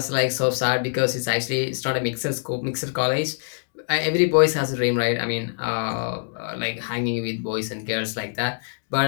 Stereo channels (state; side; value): silent; right; digital silence